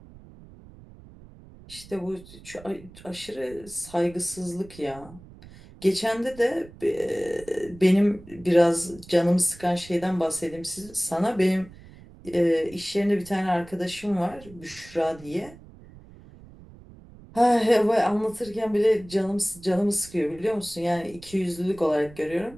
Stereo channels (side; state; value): right; noise; rumble, 20 dB below the sound